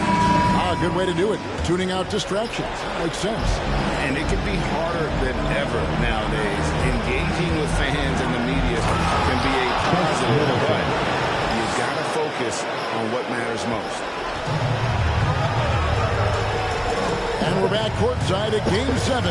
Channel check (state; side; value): identical; both; correlation 1.00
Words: Good way to do it. Tuning out distractions. Makes sense. And it can be harder than ever nowadays. Engaging with fans and the media can be a positive, but you've got to focus on what matters most. And we're back courtside at Game 7